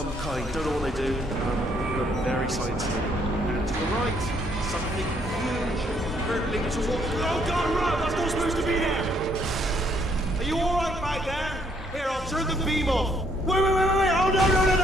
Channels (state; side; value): normal; both; correlation 0.69